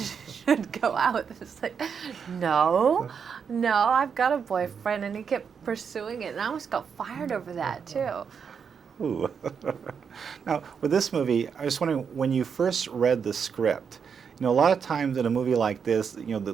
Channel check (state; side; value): quieter; left; 6.6 dB